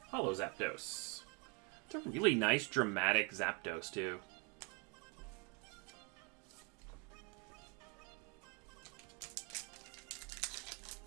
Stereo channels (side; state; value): left; quieter; 33.2 dB